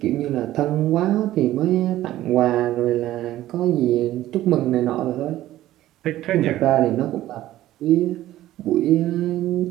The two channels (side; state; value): left; quieter; 14.5 dB